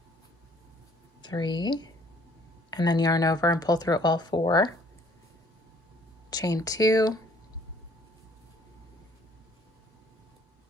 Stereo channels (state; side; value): normal; both; correlation 0.59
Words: 3, and then yarn over and pull through all 4. Chain 2.